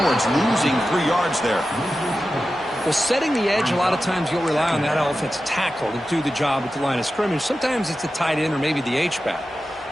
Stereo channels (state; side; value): normal; both; correlation 0.93